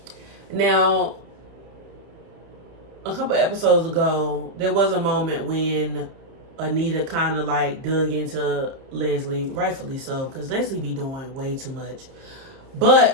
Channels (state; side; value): late; left; 30 ms